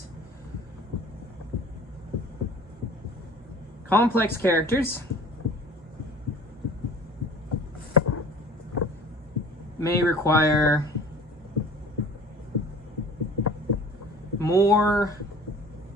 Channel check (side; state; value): both; normal; correlation 0.45